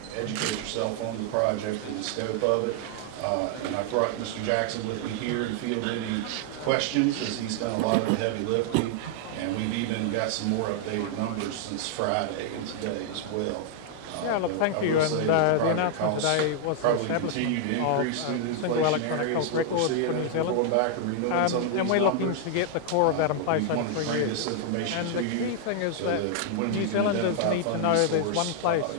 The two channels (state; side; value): different; both; correlation 0.00